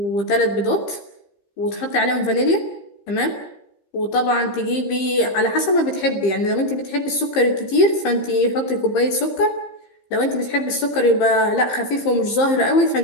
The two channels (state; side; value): late; right; 15 ms